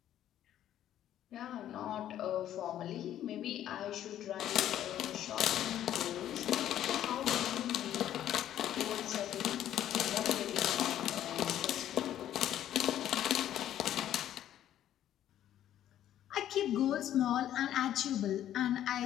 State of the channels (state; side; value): quieter; right; 11.6 dB